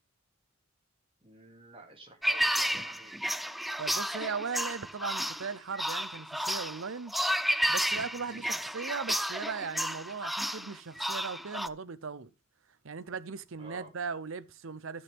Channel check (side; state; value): both; normal; correlation 0.68